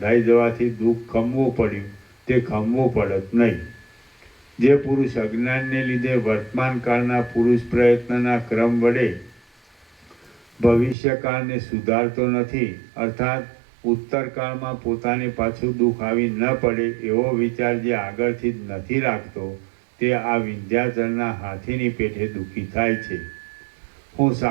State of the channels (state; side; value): drops out; left; at 11.0 s